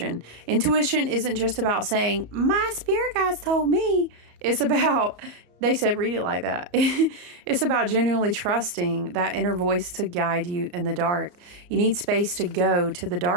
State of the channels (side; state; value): left; late; 34 ms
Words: Intuition isn't just about saying, my spirit guides told me. It's about, they said, read it like that. It's about genuinely trusting that inner voice to guide you in the dark. You need space to go to the